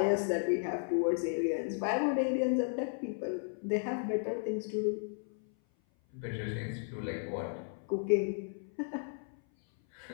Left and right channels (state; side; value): silent; right; 55 dB below the other